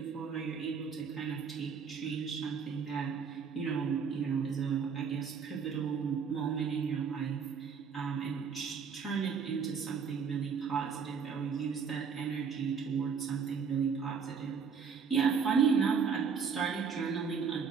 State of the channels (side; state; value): left; quieter; 6.1 dB